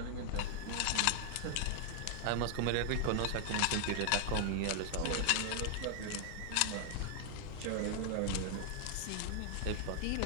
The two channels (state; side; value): different; both; correlation 0.00